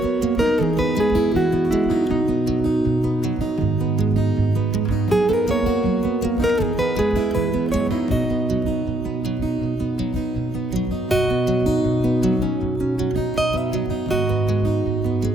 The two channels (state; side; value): normal; both; correlation 0.73